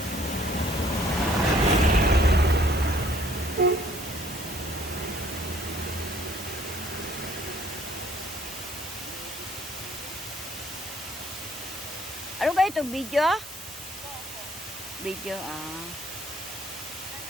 Ano ba ito? Video? Video, ah.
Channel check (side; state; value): both; normal; correlation 0.61